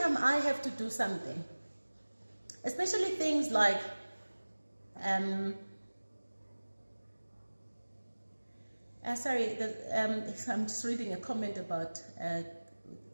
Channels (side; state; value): both; inverted; correlation -1.00